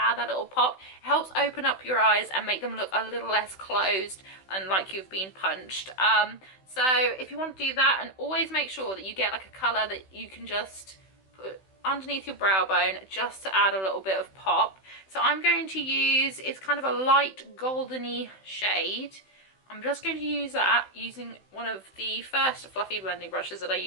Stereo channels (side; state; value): right; late; 16 ms